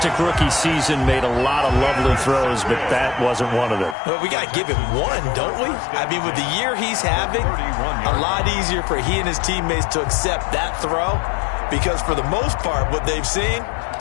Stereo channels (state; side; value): drops out; right; at 4.0 s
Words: rookie season, made a lot of lovely throws, but that wasn't one of them. Well, we got to give him one, don't we? I mean, with the year he's having, a lot easier for he and his teammates to accept that throw, because for the most part, what they've seen,